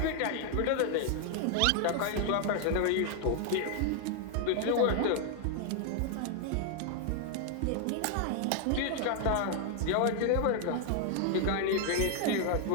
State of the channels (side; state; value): both; different; correlation 0.00